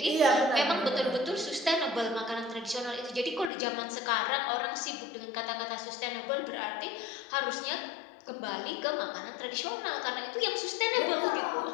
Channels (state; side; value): drops out; right; at 3.5 s